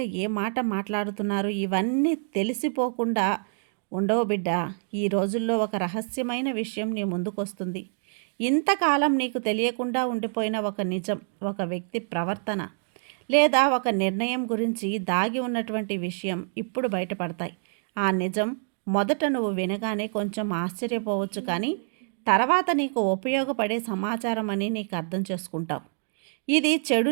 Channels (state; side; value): silent; left; digital silence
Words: ఏ మాట మాట్లాడుతున్నారు, ఇవన్నీ తెలిసిపోకుండా ఉండవు బిడ్డ. ఈ రోజుల్లో ఒక రహస్యమైన విషయం నీ ముందుకొస్తుంది. ఇంతకాలం నీకు తెలియకుండా ఉండిపోయిన ఒక నిజం, ఒక వ్యక్తి ప్రవర్తన లేదా ఒక నిర్ణయం గురించి దాగి ఉన్నటువంటి విషయం ఇప్పుడు బయటపడతాయి. ఆ నిజం మొదట నువ్వు వినగానే కొంచెం ఆశ్చర్యపోవచ్చు, కానీ తర్వాత నీకు ఉపయోగపడే సమాచారం అని నీకు అర్థం చేసుకుంటావు. ఇది చెడు